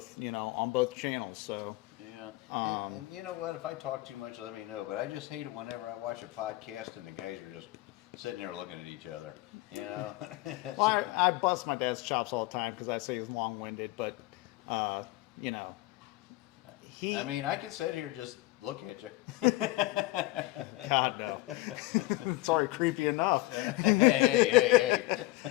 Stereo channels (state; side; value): quieter; right; 19.5 dB